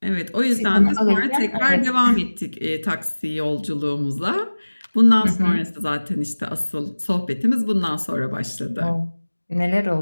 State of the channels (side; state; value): both; inverted; correlation -1.00